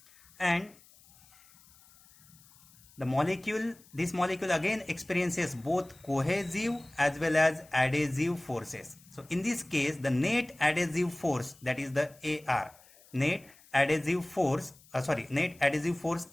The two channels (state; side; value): noise; left; hiss, 26 dB below the sound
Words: and this molecule again experiences both cohesive as well as adhesive forces. So in this case the net adhesive force, that is the AR, net adhesive force